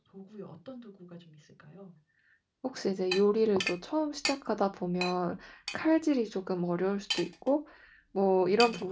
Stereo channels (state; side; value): identical; both; correlation 1.00